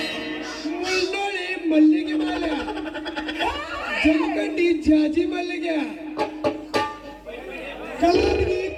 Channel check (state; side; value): identical; both; correlation 1.00